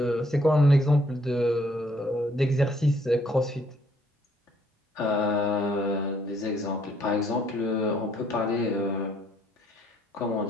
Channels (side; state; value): both; normal; correlation 0.66